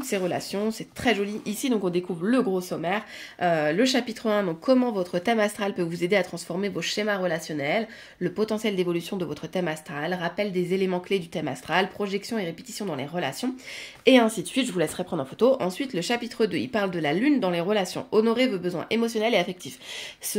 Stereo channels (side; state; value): both; identical; correlation 1.00